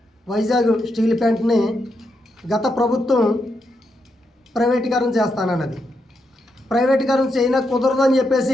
వైజాగ్ స్టీల్ ప్లాంట్ని గత ప్రభుత్వం ప్రైవేటీకరణ చేస్తానన్నది. ప్రైవేటీకరణ చేయన కుదరదని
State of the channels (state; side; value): normal; both; correlation 0.82